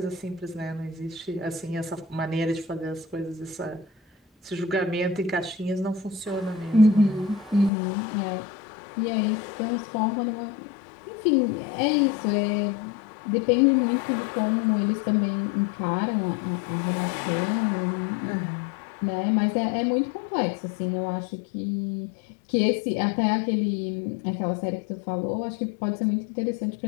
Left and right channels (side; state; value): right; drops out; at 7.7 s